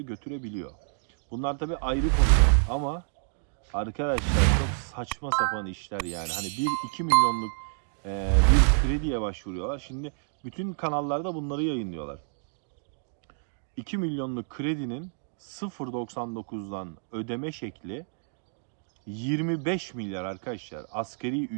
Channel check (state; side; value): silent; left; digital silence